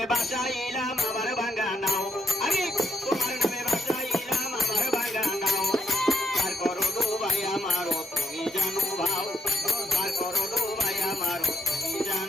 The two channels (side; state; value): both; normal; correlation 0.78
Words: বাসাইলাম আমার ভাঙ্গা নাও আমি তোমার নামে বাসাইলাম আমার ভাঙ্গা নাও আর করো ডুবাই আমারও তুমি জানো ভাও আর করো ডুবাই আমারও তুমি